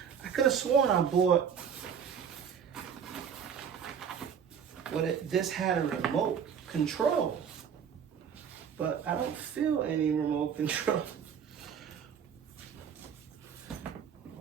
I could have sworn I bought, but this had a remote control, but I don't feel any remote control.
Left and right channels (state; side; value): quieter; left; 7.5 dB